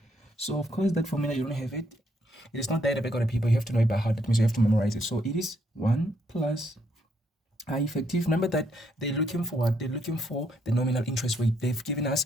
So of course that formula, you don't have it. It is not there at the back of the paper. You have to know it by heart. That means you have to memorize it. So it is 1 plus I effective. Remember that they're looking for what? They're looking for the nominal interest rate. They've given us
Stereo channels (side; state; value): both; normal; correlation 0.73